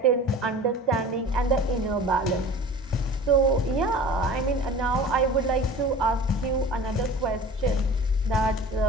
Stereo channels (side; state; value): both; normal; correlation 0.40